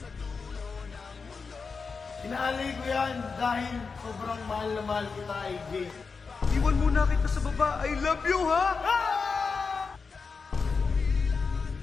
Inaalay ko yan dahil sobrang mahal na mahal kita, AJ. Iwan muna kita sa baba. I love you, ha?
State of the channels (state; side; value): quieter; right; 4.9 dB